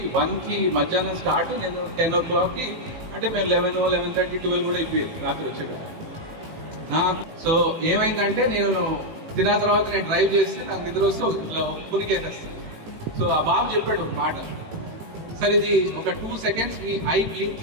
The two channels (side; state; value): left; late; 18 ms